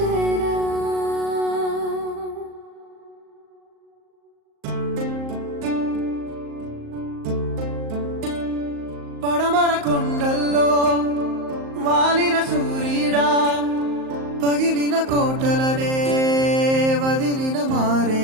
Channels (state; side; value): late; left; 38 ms